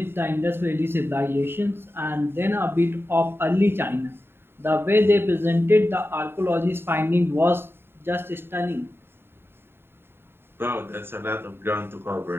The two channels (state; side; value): late; left; 0.11 ms